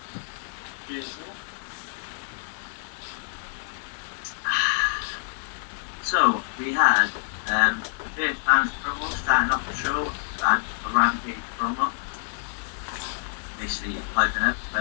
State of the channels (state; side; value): silent; right; 60 dB below the other